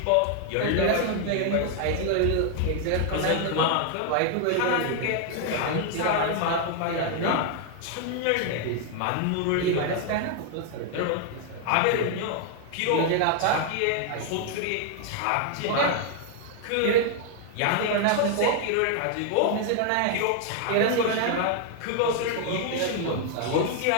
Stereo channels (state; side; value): different; both; correlation 0.00